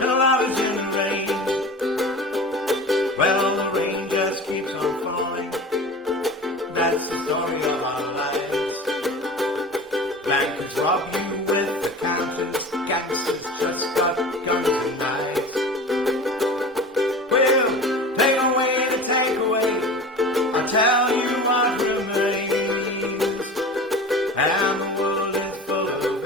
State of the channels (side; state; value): both; normal; correlation 0.35